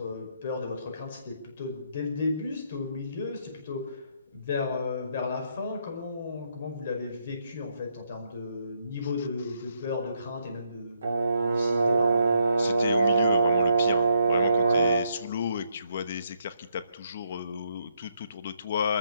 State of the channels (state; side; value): inverted; both; correlation -0.76